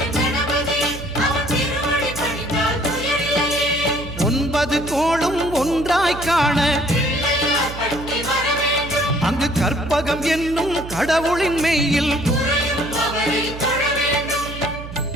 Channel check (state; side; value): noise; right; hum, 11 dB below the sound